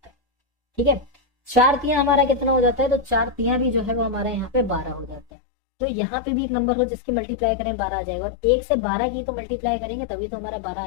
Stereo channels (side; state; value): right; drops out; at 5.2 s